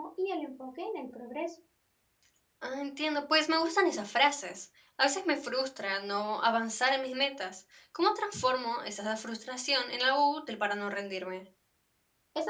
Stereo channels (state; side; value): identical; both; correlation 1.00